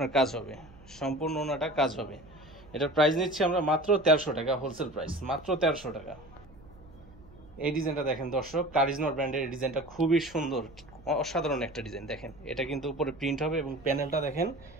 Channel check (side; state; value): right; noise; hum, 23 dB below the sound